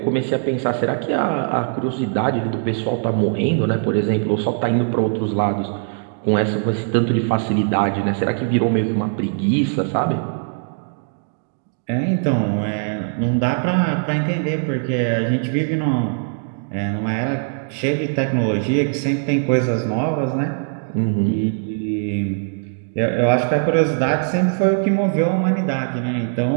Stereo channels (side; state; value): left; silent; digital silence